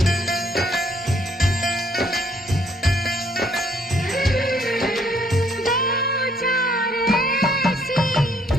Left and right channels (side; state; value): both; normal; correlation 0.66